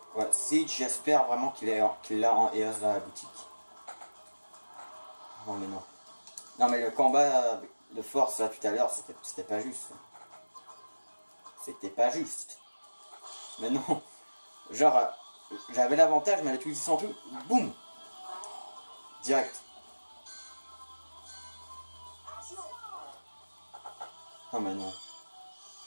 ouais, Siege, j'espère vraiment qu'il l'a en EOS dans la boutique. Non mais non. Non mais le combat de force là tout à l'heure, c'était pas juste. C'était pas juste. Mais non. Genre, j'avais l'avantage, mais elle a utilisé son truc. Boum. Direct. Non mais non.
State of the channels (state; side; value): inverted; both; correlation -1.00